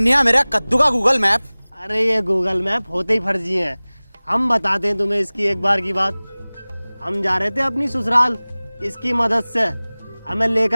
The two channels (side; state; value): both; inverted; correlation -1.00